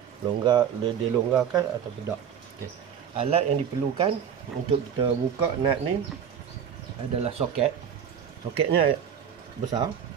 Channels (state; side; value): quieter; left; 8.2 dB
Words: dia longgarkan atau tidak. Okey. Alat yang diperlukan untuk kita buka nut ni adalah soket. Soketnya besar,